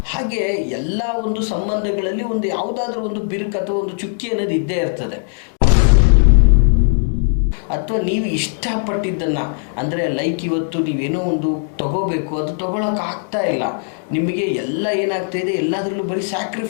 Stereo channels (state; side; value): silent; right; digital silence